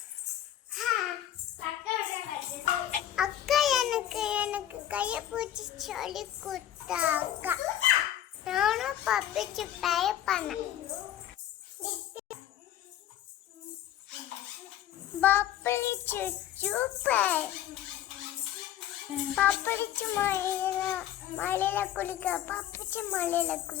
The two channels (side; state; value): right; quieter; 11.7 dB